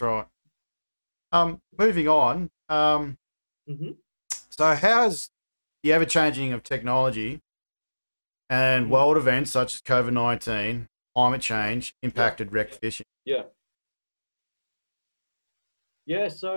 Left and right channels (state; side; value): inverted; both; correlation -1.00